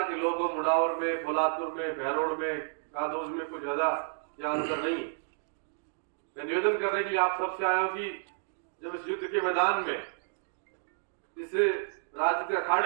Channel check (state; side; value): silent; left; digital silence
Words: के लोगों मुडावर में, फुलातुर में, बहरोड़ में, कादोज में कुछ ज्यादा अंतर नहीं है। मैं निवेदन करने के लिए आप सबसे आया हूं कि जब इस युद्ध के मैदान में, इस राज्य के